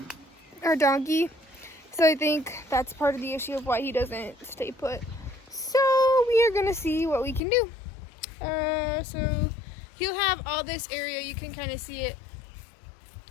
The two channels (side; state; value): right; drops out; at 7.4 s